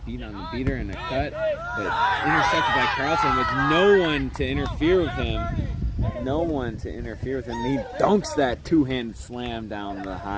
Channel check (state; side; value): identical; both; correlation 1.00